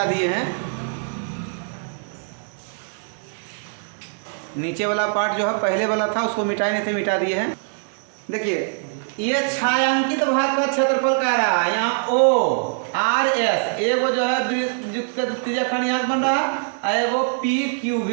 दिए हैं। नीचे वाला पार्ट जो है पहले वाला था उसको मिटाए नहीं थे, मिटा दिए हैं। देखिए ये छायांकित भाग का क्षेत्रफल कह रहा है, यहाँ ओ आर एस, एगो जो है त्रिज्या खंड यहाँ बन रहा है एगो पी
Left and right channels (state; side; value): silent; left; digital silence